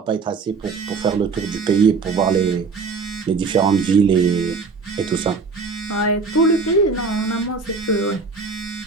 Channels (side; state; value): left; quieter; 4.7 dB